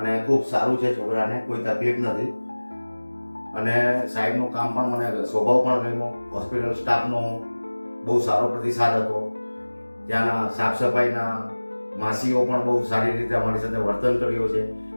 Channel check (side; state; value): both; inverted; correlation -1.00